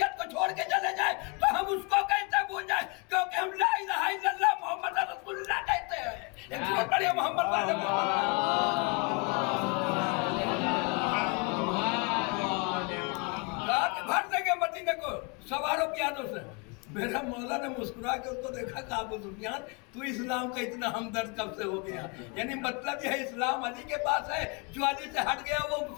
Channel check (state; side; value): quieter; right; 31.5 dB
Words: को छोड़ के चले जाए तो हम उसको कैसे भूल जाए? क्योंकि हम ला इलाहा इल्लल्लाह मोहम्मद रसूलुल्लाह कहते हैं। एक जोर पढ़िए मोहम्मद वाले रात भर देंगे मदीने को सवारों की यादों से। मेरा मौला ने मुस्कुरा के उसको देखा कि अबू सुफियान तू इस्लाम का इतना हमदर्द कब से हो गया? यानी मतलब यह इस्लाम अली के पास है, जो अली से हट गया वो